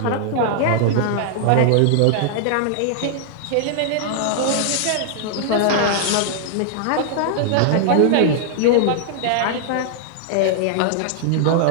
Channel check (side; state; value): both; different; correlation -0.01